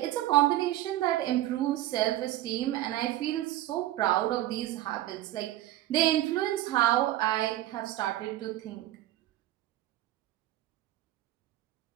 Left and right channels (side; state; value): left; quieter; 14.9 dB